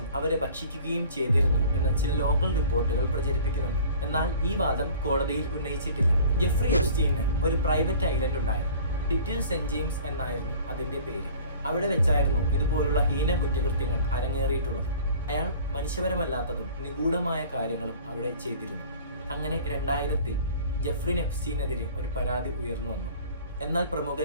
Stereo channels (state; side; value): inverted; both; correlation -0.46